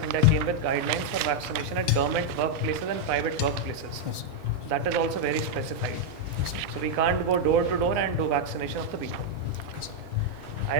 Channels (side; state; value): left; late; 1.4 ms